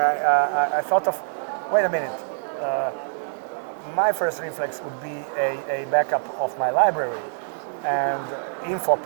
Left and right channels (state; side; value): silent; left; digital silence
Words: I thought of, wait a minute, my first reflex would be a backup of my library, and info